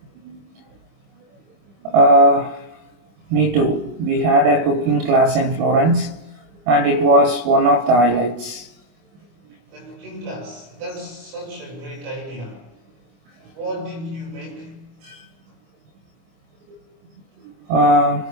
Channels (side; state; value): left; late; 25 ms